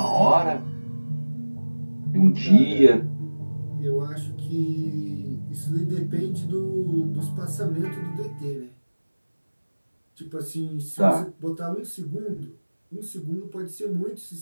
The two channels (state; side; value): inverted; both; correlation -1.00